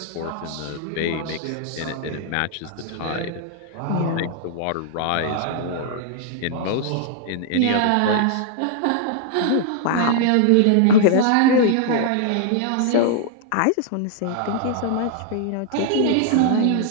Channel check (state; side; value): different; both; correlation -0.01